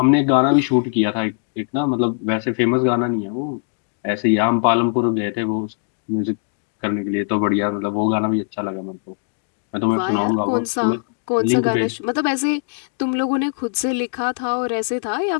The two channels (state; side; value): silent; right; 57 dB below the other